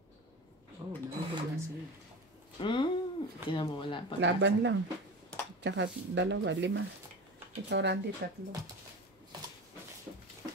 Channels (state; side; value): normal; both; correlation 0.29